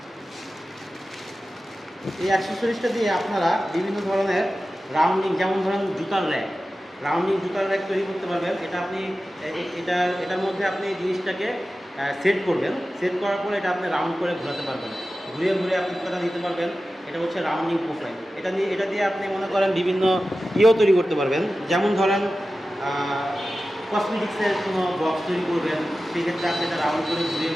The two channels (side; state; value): both; normal; correlation 0.94